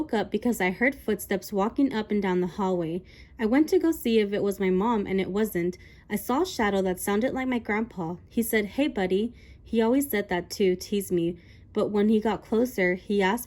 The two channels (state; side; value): identical; both; correlation 1.00